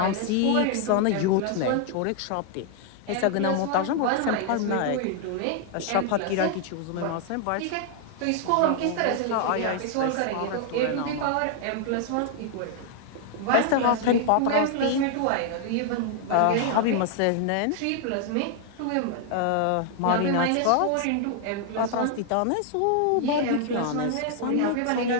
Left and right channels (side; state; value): both; different; correlation 0.00